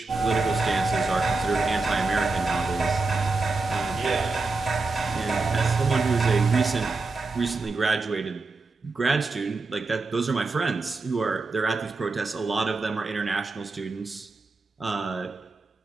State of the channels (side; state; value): left; quieter; 3.8 dB